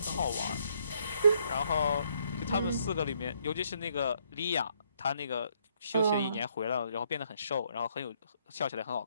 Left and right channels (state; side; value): inverted; both; correlation -0.70